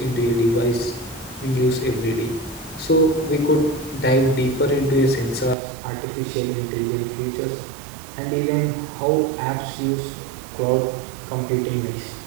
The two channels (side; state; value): left; drops out; at 5.6 s